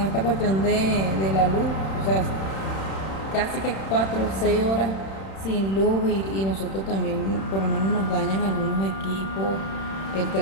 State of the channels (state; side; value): late; right; 31 ms